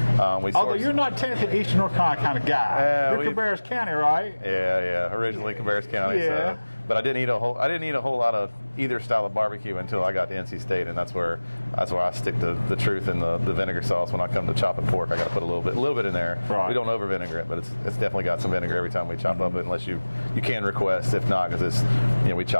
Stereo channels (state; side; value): inverted; both; correlation -1.00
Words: Although you're not technically Eastern North Carolina kind of guy. You're Cabarrus County, right? Yeah. Originally Cabarrus County. Yeah. So, but I didn't eat a whole lot of either style of barbecue until I got to NC State, and that's where I stick to the truth in the vinegar sauce. When I come to chopping pork, I got to put a little bit in there. Right. We don't over vinegar it, but it's definitely got some vinegar every time we chop up it, unless you can request. If not, because it's we